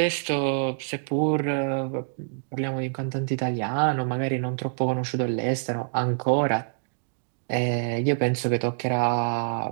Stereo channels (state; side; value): silent; left; digital silence